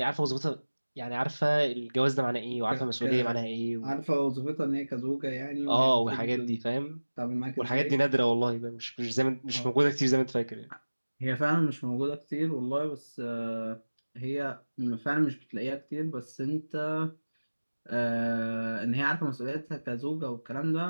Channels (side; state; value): both; inverted; correlation -1.00